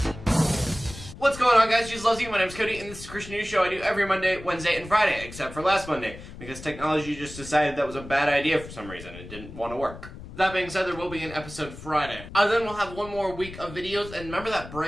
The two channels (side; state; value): left; noise; rumble, 14 dB below the sound